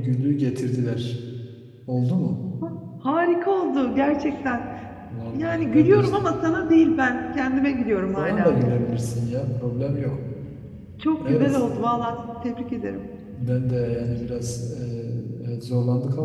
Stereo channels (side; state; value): both; identical; correlation 1.00